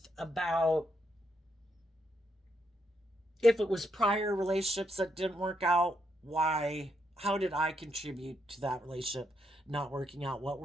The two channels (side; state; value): both; normal; correlation 0.78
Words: about if it was prior relationships that didn't work out, why, how did I contribute to that relationship not working out? What